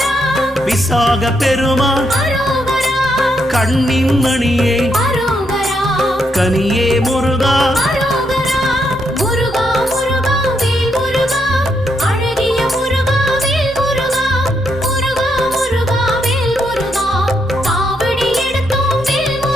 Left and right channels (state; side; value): normal; both; correlation 0.78